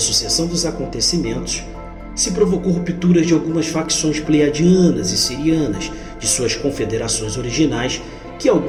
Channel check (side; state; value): both; identical; correlation 1.00